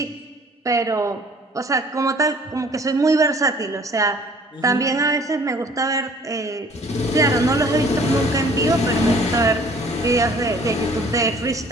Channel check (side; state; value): both; normal; correlation 0.54